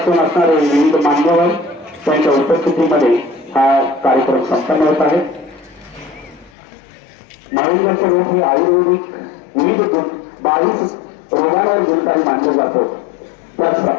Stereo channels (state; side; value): drops out; right; at 6.5 s